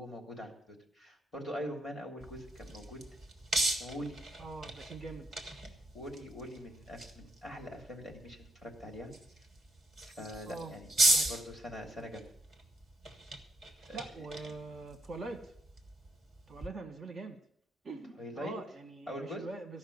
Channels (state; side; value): normal; both; correlation 0.76